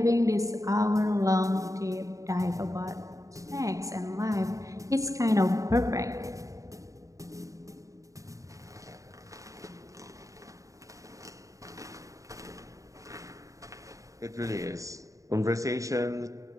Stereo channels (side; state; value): left; late; 0.16 ms